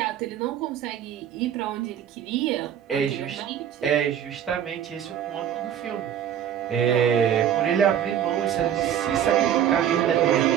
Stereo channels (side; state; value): left; quieter; 9.7 dB